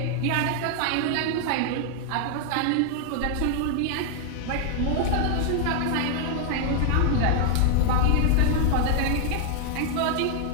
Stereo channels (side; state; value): both; different; correlation 0.00